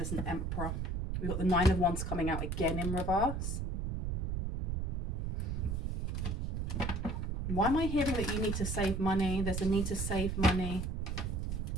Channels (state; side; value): noise; right; rumble, 1 dB below the sound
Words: an Emperor. We've got the Nine of Wands coming out again in reverse. Why am I hearing that you need to save money? There's a need to save money.